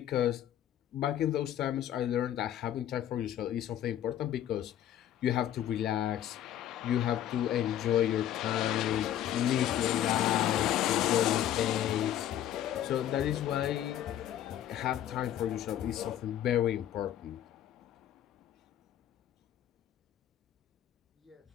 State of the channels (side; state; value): right; quieter; 11.3 dB